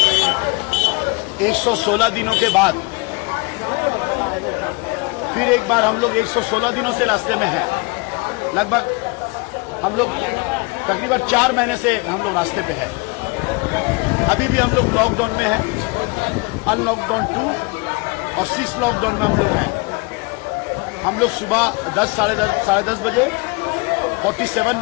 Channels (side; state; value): right; quieter; 28.6 dB